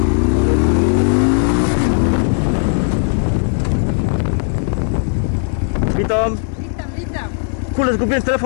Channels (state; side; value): silent; right; digital silence